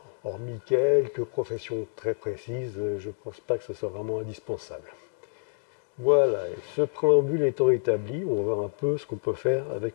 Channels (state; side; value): silent; right; digital silence